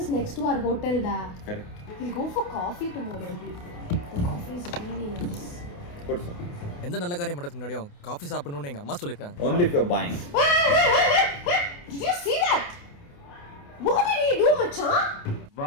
next to our hotel da correct we'll go for coffee tomorrow the coffee is really nice ಕೊಡ್ಸು எந்த நல்ல காரியம் பண்றதுக்கு முன்னாடியும் காஃபி சாப்பிடணும்னு எங்க அம்மா சொல்லிருக்காங்க only if you're buying did you see that what did he do macha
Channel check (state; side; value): late; right; 28 ms